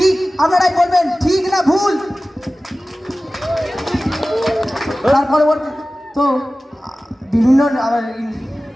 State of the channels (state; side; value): normal; both; correlation 0.96